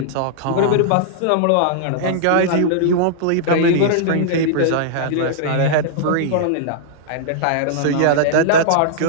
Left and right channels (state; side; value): different; both; correlation -0.02